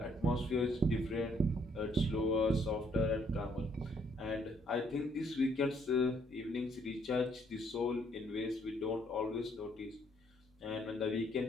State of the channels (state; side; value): normal; both; correlation 0.68